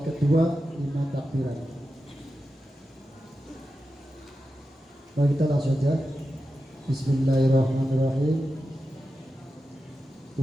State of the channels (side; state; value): both; normal; correlation 0.91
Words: kedua 5 takbiran. Mari kita langsung saja. Bismillahirrahmanirrahim.